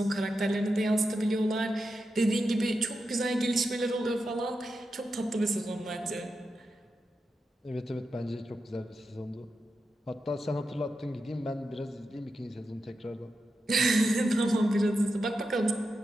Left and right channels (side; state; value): both; normal; correlation 0.88